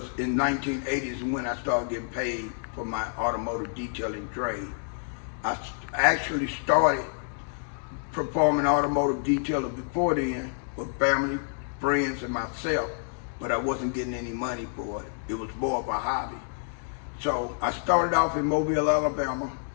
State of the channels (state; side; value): silent; right; digital silence